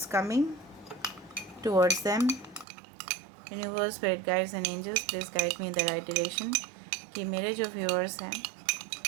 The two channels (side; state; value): left; drops out; at 2.7 s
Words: coming towards them. Universe spirit guides and angels please guide me in the right direction. कि मेरे जो viewers हैं